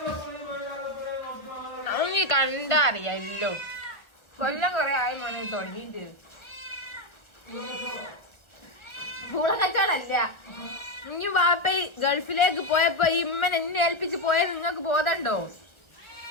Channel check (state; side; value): late; right; 1.1 ms